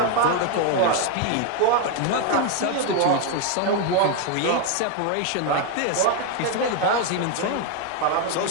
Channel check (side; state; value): both; different; correlation 0.01